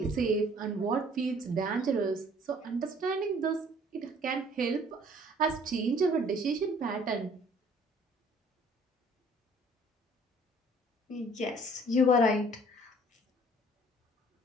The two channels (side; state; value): both; normal; correlation 0.56